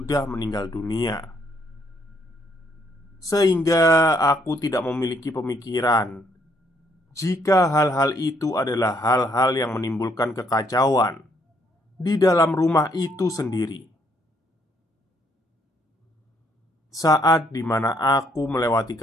meninggal dunia. Sehingga aku tidak memiliki pemikiran jika hal-hal itu adalah hal-hal yang menimbulkan kekacauan di dalam rumah itu sendiri. Saat dimana aku melewati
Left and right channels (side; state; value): both; normal; correlation 0.70